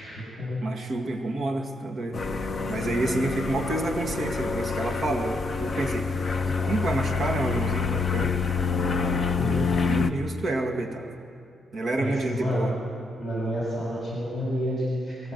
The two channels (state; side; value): normal; both; correlation 0.77